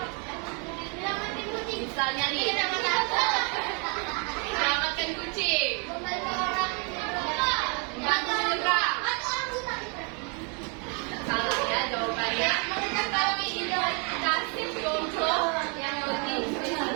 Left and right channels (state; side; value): quieter; left; 35.5 dB